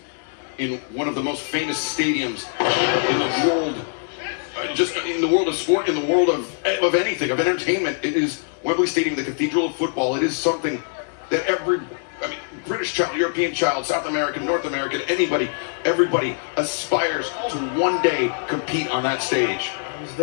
in one of the most famous stadiums in the world. Just in the world of sport, in the world of anything, of entertainment. It is Wembley Stadium, the cathedral of football. It is something that British child, European child, South American, North American, everybody aspires to one day compete on that stage. I was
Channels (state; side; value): silent; right; 60 dB below the other